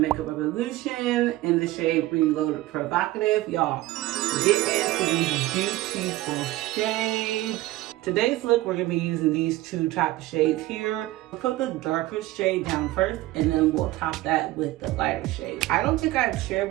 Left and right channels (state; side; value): quieter; left; 17.4 dB